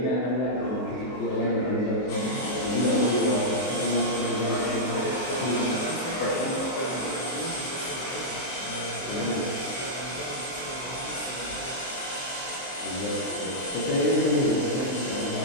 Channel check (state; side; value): late; right; 23 ms